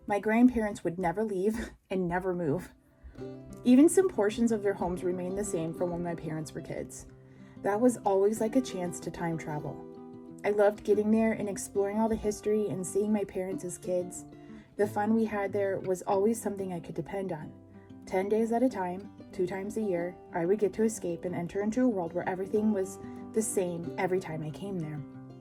My grandparents would never leave and never move. Even some portions of their homes remained the same from when my parents were kids. That was always like a chance to time travel. I loved getting there and exploring all the history and seeing my parents as kids. The fun we had there was always something I could depend on. 10 days at a time, 2 times a year, I would get to escape and enter into a world where everything was the same every time I came there.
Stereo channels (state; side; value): identical; both; correlation 1.00